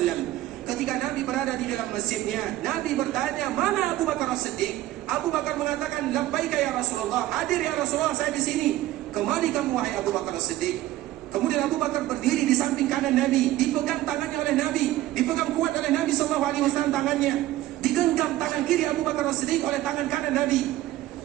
Ketika Nabi berada di dalam masjidnya, Nabi bertanya, "Mana Abu Bakar As-Siddiq?" Abu Bakar mengatakan, "Labbaika ya Rasulullah." "Hadir ya Rasulullah, saya di sini." "Kemari kamu wahai Abu Bakar As-Siddiq." Kemudian Abu Bakar berdiri di samping kanan Nabi, dipegang tangannya oleh Nabi, dipegang kuat oleh Nabi sallallahu alaihi wasallam tangannya. Digenggam tangan kiri Abu Bakar As-Siddiq oleh tangan kanan Nabi.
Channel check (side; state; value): left; quieter; 15.2 dB